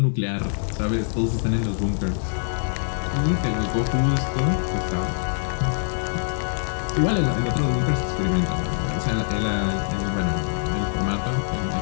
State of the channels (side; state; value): right; silent; digital silence